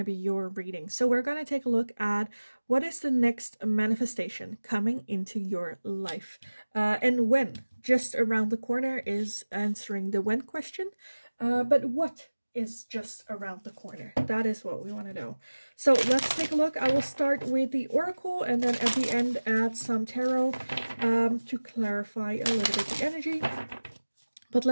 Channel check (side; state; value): both; inverted; correlation -1.00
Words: be your reading. So we're going to take a look at what is the next manifestation coming into your life. And when. Just around the corner is answering the when question. But what is just around the corner? That is what we want to know. So let's take a look. I will start with the oracle and then at the end add some tarot to clarify a little bit the energy. But